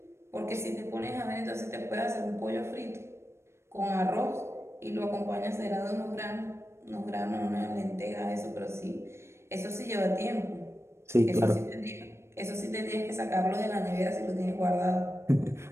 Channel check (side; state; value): left; late; 0.13 ms